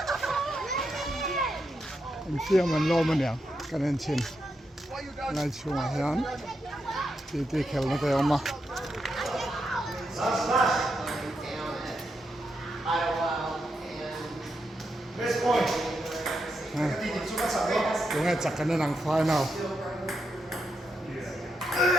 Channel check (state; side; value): normal; both; correlation 0.83